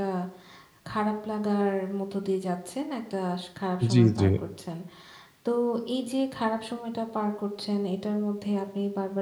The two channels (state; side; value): identical; both; correlation 1.00